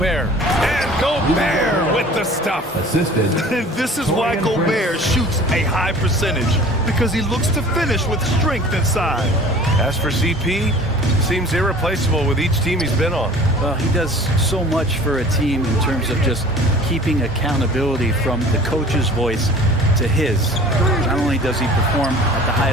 And Gobert with the stuff. Assisted. This is why Gobert shoots a high percentage, because he looks to finish with strength inside. As for CP, seems irreplaceable with each team he's been on. Well, he does so much for a team in terms of just keeping accountability from the coach's voice to his. Not only does he perform at the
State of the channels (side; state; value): both; normal; correlation 0.46